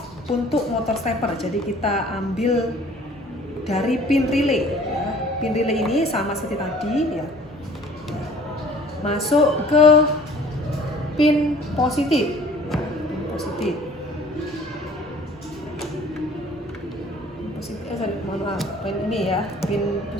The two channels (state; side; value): normal; both; correlation 0.51